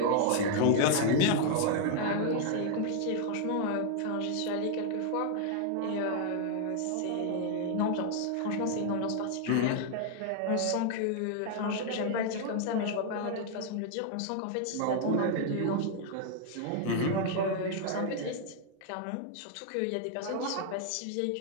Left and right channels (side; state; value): both; different; correlation 0.00